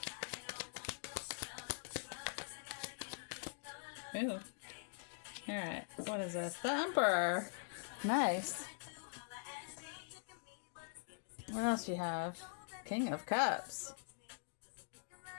Ooh. Alright. What is this? The Emperor. Nice. What else you have? King of Cups.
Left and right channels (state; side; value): silent; right; digital silence